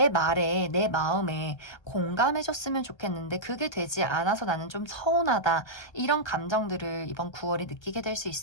말에 내 마음에 공감해줬으면 좋겠는데 그게 되지 않아서 나는 좀 서운하다 이런 감정들을 이번 9월에 느끼게 될 수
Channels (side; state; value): right; late; 1.3 ms